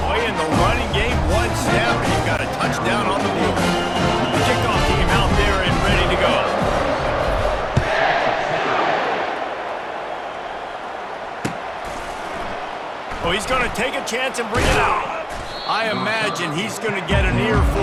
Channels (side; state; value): both; identical; correlation 1.00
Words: going to take a chance and bring it out. I imagine he's going to get an